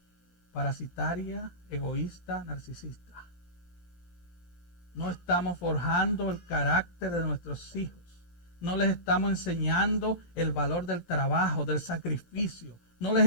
parasitaria, egoísta, narcisista. No estamos forjando el carácter de nuestros hijos. No les estamos enseñando el valor del trabajo, del sacrificio. No les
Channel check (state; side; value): late; right; 17 ms